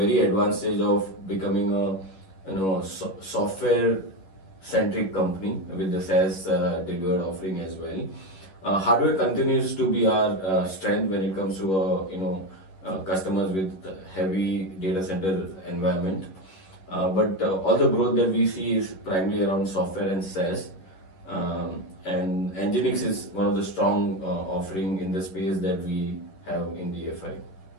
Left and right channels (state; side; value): late; right; 11 ms